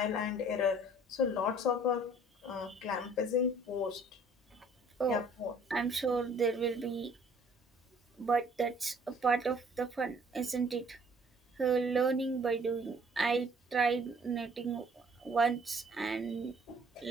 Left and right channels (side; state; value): both; normal; correlation 0.57